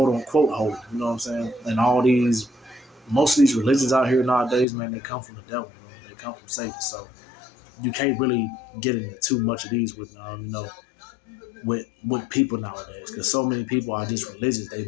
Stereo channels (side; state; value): right; drops out; at 4.7 s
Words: unquote holy. You know what I'm saying? And most of these religions out here nowadays, man, they come from the devil. They come from Satan. So you can't really get into too much of these with, with people nowadays, because so many people are just religious. They're